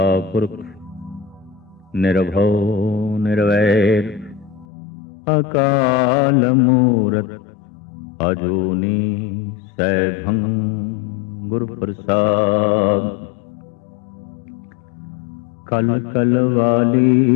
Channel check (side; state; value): right; drops out; at 4.7 s